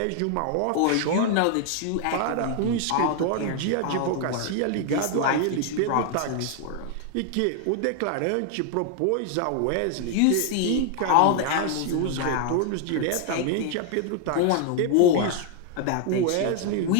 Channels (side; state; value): both; different; correlation 0.00